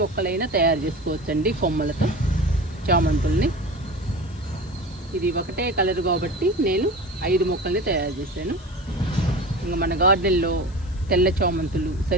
తయారు చేసుకోవచ్చండి కొమ్మలతో చామంతుల్ని. ఇది ఒకటే కలర్ కాబట్టి నేను 5 మొక్కల్ని తయారు చేశాను. ఇంకా మన గార్డెన్లో తెల్ల చామంతులు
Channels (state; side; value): noise; left; hiss, 27 dB below the sound